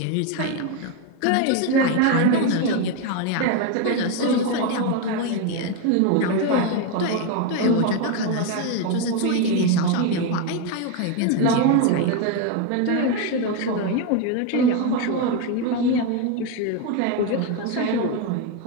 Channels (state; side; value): different; both; correlation 0.02